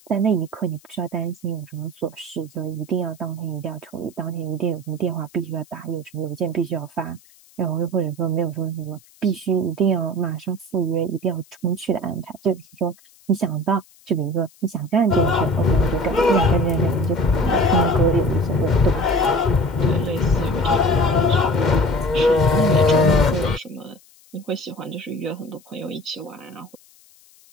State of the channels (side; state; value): left; noise; hiss, 28 dB below the sound